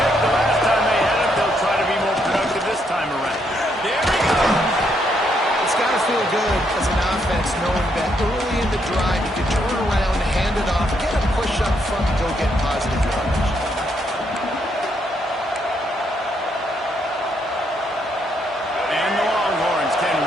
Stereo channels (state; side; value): normal; both; correlation 0.75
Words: the last time they had it. They'll try to be more productive this time around. There we go. It's got to feel good as an offense knowing that early in the drive you can turn around, hand it off, get a push up front, and go get positive yardage. And the Longhorns can